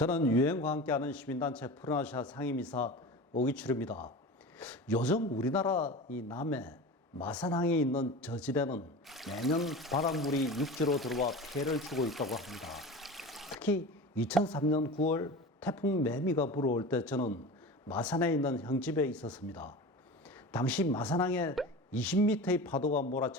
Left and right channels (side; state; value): both; normal; correlation 0.32